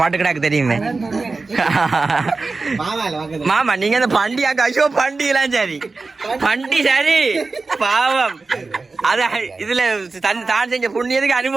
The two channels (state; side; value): quieter; left; 3.9 dB